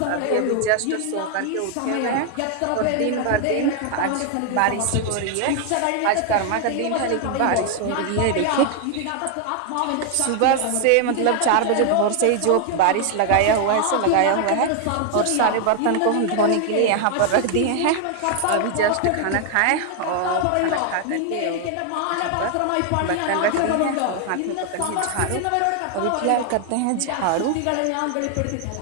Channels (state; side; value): different; both; correlation 0.00